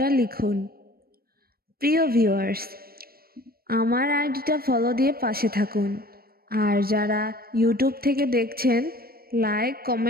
লিখুন। প্রিয় ভিউয়ার্স, আমার আইডিটা ফলো দিয়ে পাশে থাকুন, আর যারা ইউটিউব থেকে দেখছেন লাইক,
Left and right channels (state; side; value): late; left; 0.44 ms